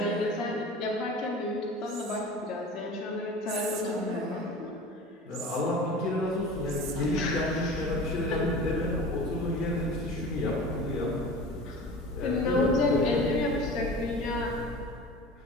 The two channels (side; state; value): both; normal; correlation 0.37